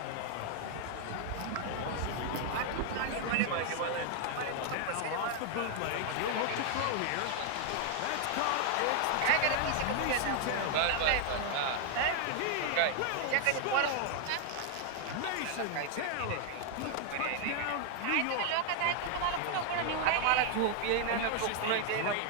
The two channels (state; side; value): different; both; correlation 0.00